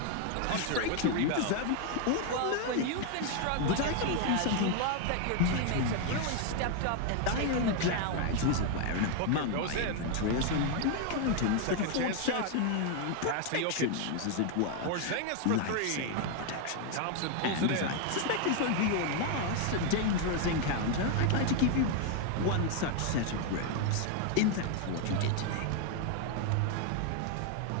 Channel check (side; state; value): both; different; correlation 0.00